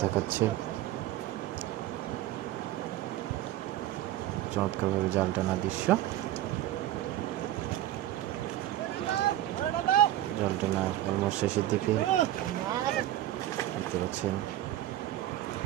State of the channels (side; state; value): left; quieter; 13.9 dB